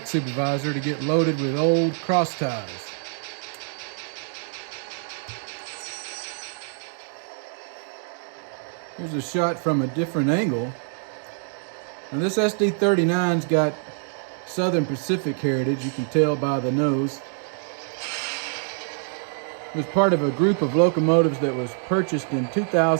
supervisor to get loaded with old cross ties. Here's a shot from a different angle. Now this SD39's got Southern Pacific heritage, you can tell by the nose. It was part of a group of locomotives that was purchased in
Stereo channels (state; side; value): silent; left; 62 dB below the other